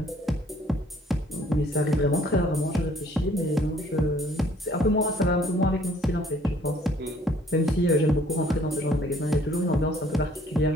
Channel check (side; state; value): both; normal; correlation 0.59